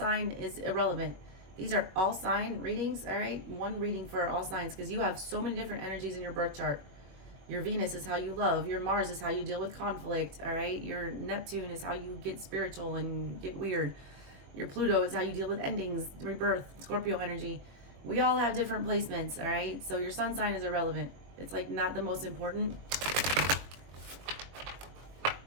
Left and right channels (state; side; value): late; left; 21 ms